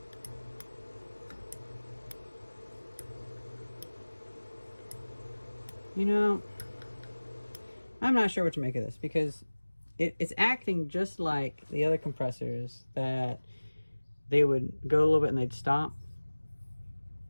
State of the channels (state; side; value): inverted; both; correlation -1.00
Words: You know, I'm not sure what to make of this, because it's acting just like the other compressors that they would go a little bit and they'd stop.